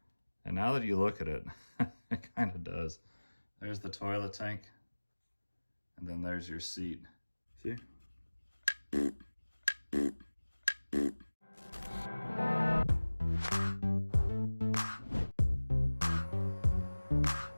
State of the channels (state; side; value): inverted; both; correlation -1.00